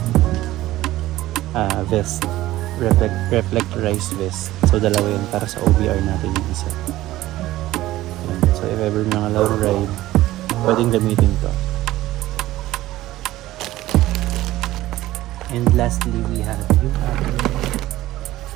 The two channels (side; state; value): left; quieter; 16.0 dB